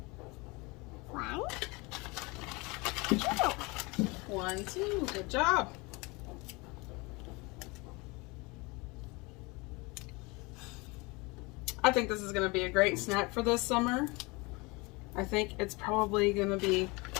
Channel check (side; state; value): right; quieter; 26.0 dB